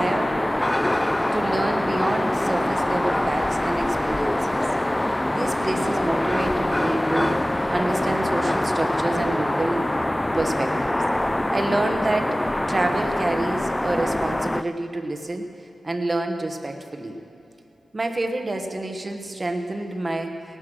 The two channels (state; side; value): normal; both; correlation 0.97